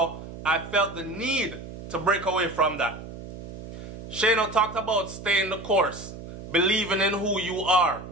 I felt the need to break away from that. Shano talked about staying the course, believing in who you are.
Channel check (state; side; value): noise; right; hum, 12 dB below the sound